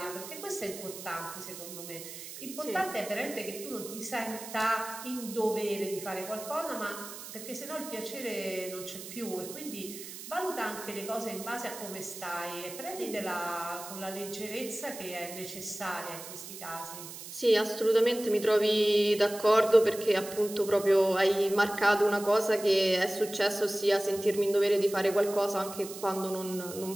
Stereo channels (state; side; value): noise; right; hiss, 12 dB below the sound